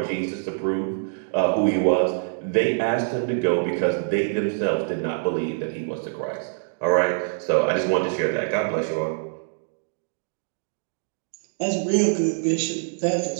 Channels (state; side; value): silent; left; digital silence